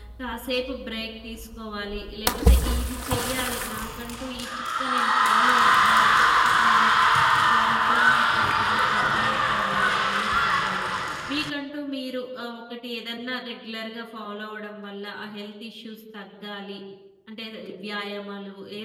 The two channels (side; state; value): both; identical; correlation 1.00